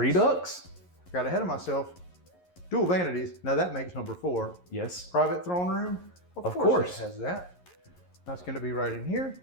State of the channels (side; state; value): right; late; 11 ms